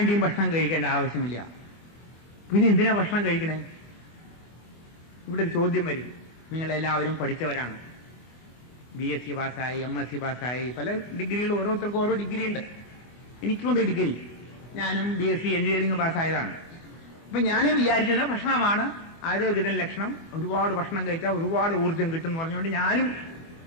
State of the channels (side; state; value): right; late; 24 ms